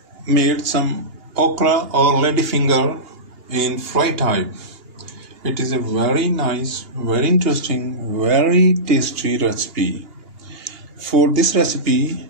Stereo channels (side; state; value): left; late; 2.8 ms